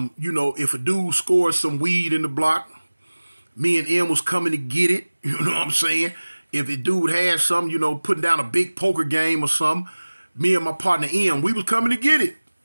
if a dude scored some weed in the block, me and M was coming to get it. You know what I'm saying? If a dude had something, putting down a big poker game or something, me and my partner M, we was coming to get it.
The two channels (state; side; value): inverted; both; correlation -1.00